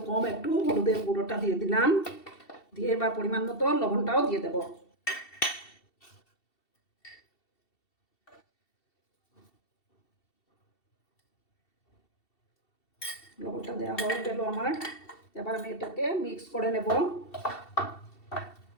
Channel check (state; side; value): late; right; 2.7 ms